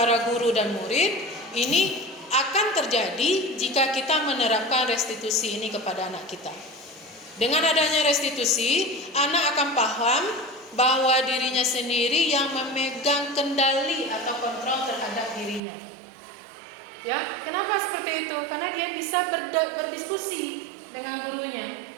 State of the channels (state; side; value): drops out; left; at 15.6 s